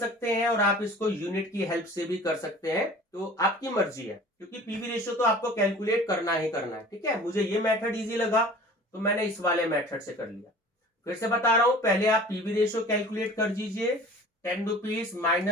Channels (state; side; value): normal; both; correlation 0.43